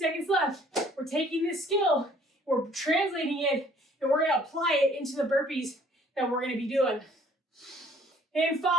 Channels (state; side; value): normal; both; correlation 0.58